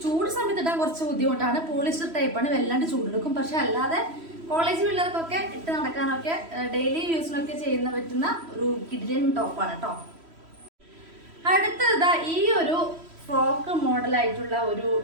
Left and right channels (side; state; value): left; late; 3.1 ms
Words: ചൂട് സമയത്ത് ഇടാൻ കുറച്ച് ബുദ്ധിമുട്ടാണ്. പോളിസ്റ്റർ ടൈപ്പാണ്, വല്ലാണ്ട് ചൂടെടുക്കും. പക്ഷെ അല്ലാതെ കോളേജ് പിള്ളേർക്കൊക്കെ ഇട്ട് നടക്കാനൊക്കെ ഡെയിലി യൂസിനൊക്കെ ചെയ്യുന്ന പറ്റുന്ന ഒരു കിഡിലൻ ടോപ്പാണ് കേട്ടോ. അടുത്തത് ഈ ഒരു ഫ്രോക്ക് മോഡലായിട്ടുള്ള ഒരു